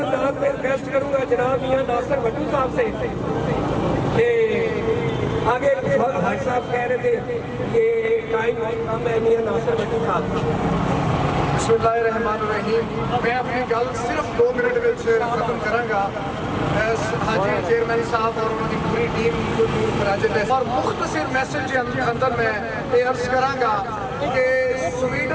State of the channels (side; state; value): both; identical; correlation 1.00